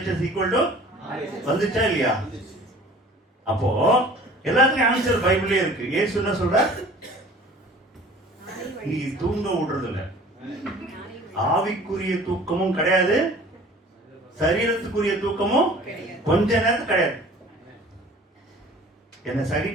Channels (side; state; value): both; normal; correlation 0.47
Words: ஈக்குவல் டு வந்துச்சா இல்லையா? அப்போ எல்லாத்துக்கும் ஆன்சர் பைபிளே இருக்கு. இயேசு என்ன சொல்ற? நீ தூங்க விடுறது இல்ல. ஆவிக்குரிய தூக்கமும் கிடையாது, சரீரத்துக்குரிய தூக்கமும் கொஞ்ச நேரத்துக்கு கிடையாது. என்ன